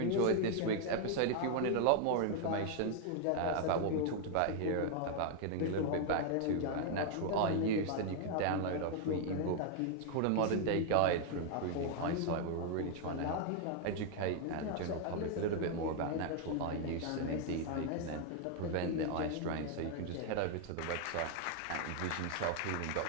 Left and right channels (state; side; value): different; both; correlation 0.00